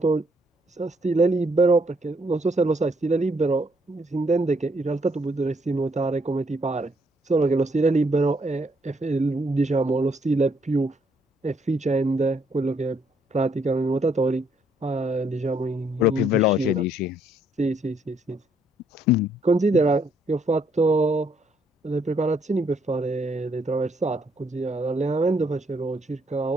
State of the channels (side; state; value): both; normal; correlation 0.70